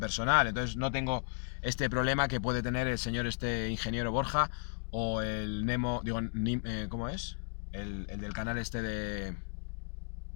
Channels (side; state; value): right; silent; digital silence